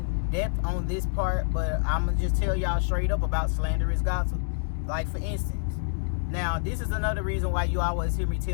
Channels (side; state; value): right; silent; digital silence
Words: depth on this part, but I'm gonna just tell y'all straight up about slanderous gossip. Like, for instance, now this is another reason why you always hear me